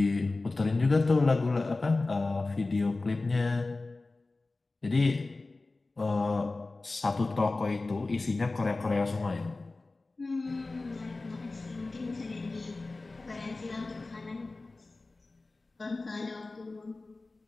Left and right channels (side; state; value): right; quieter; 3.3 dB